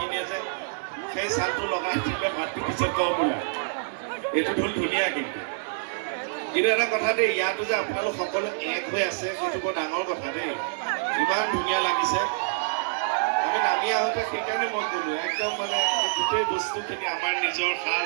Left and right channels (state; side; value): silent; left; digital silence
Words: যায় সেই চালটো লগাই দিলে মাতটো পিছত কম ওলায় এইটো ঢোল ধুনীয়া কিন্তু এটা কথা দেই ইয়াতো যে আপোনালোক সকলো এক হৈ আছে সেইটো বৰ ডাঙৰ কথা দেই ইমান ধুনীয়া লাগিছে আমি নামি আহোঁতে সেইকাৰণে মই ক'লো একদম মানে গোটেই বস্তুখিনি আমাৰ নিজৰ